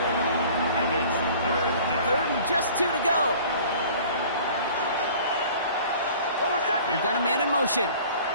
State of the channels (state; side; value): inverted; both; correlation -0.48